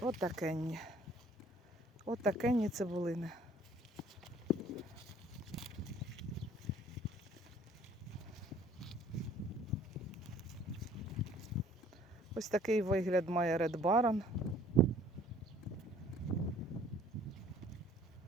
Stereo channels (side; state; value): both; normal; correlation 0.55